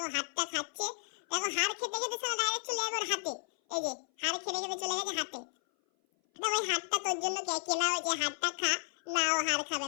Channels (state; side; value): silent; right; 56 dB below the other